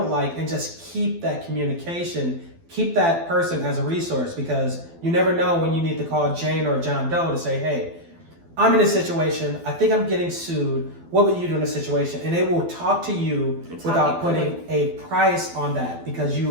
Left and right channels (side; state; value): left; late; 12 ms